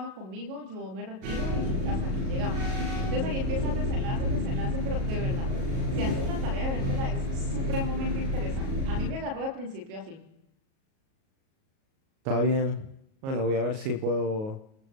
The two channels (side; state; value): left; late; 37 ms